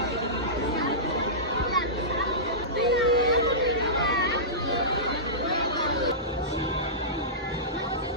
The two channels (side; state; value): both; normal; correlation -0.18